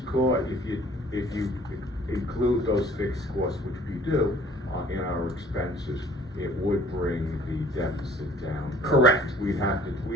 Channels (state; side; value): normal; both; correlation 0.53